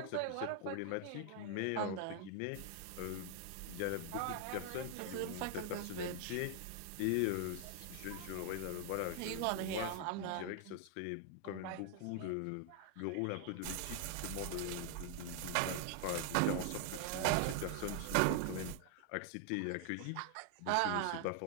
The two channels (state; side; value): different; both; correlation 0.00